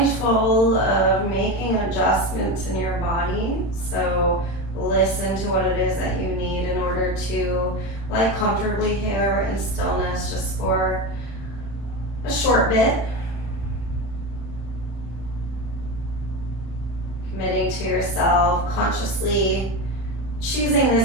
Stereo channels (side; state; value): right; late; 36 ms